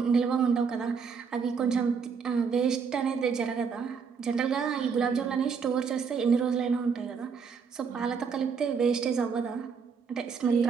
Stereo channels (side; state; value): left; quieter; 6.0 dB